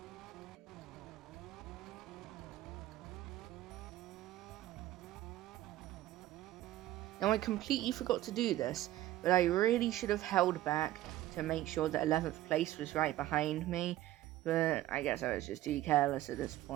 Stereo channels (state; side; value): quieter; left; 14.7 dB